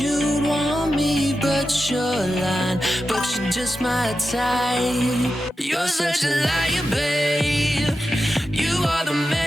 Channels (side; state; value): both; normal; correlation 0.91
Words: want me, but you're lying. But you're just my type. You're such a liar, babe. You are the